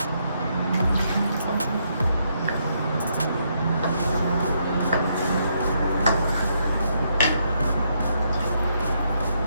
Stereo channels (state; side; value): inverted; both; correlation -0.76